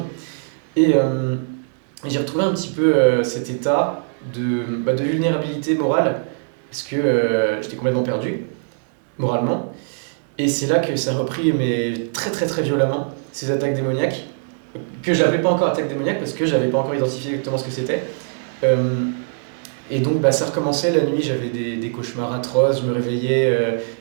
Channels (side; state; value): left; silent; digital silence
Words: Et j'ai retrouvé un petit peu cet état de vulnérabilité morale, parce que j'étais complètement perdu, moralement. Et c'est là que ça a repris, mais très très très violemment, ces attaques démoniaques, que j'appelais pas encore attaques démoniaques, parce que j'avais pas encore identifié exactement ce que c'était. Et donc ça recommençait la nuit, j'avais des cauchemars atroces, je me réveillais,